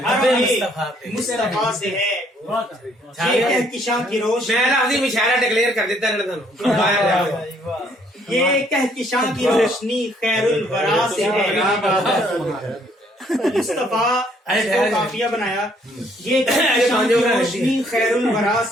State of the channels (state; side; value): normal; both; correlation 0.65